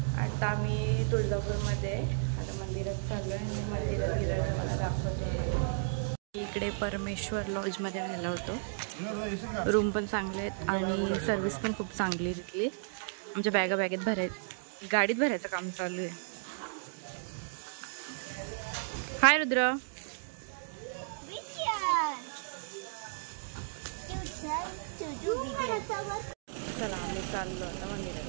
आता आम्ही तुळजापूरमध्ये आता मंदिरात चाललो आहे आणि मंदिरात गेल्यावर मला दाखवतो. इकडे परमेश्वर लॉजमध्ये राहिला होतो. रूम पण चांगले आहेत आणि सर्विस पण खूप चांगली आहे तिथली. आमच्या बॅगेत गाडीत भरायचं काम चालू आहे. हाय रुद्र. चला आम्ही चाललो आता मंदिरात.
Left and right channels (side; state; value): left; silent; digital silence